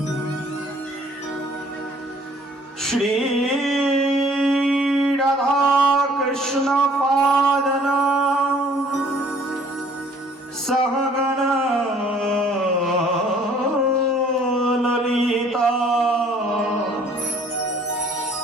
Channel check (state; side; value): normal; both; correlation 0.57